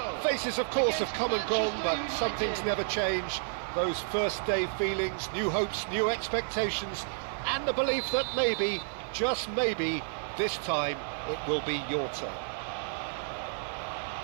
Faces, of course, have come and gone, but some things never change. Those first day feelings, new hopes, new expectations, and the belief that maybe, just maybe, this time it will be your turn.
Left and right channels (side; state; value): left; silent; digital silence